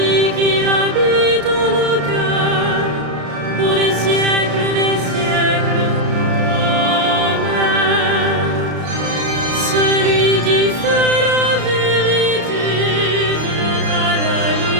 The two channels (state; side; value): late; left; 33 ms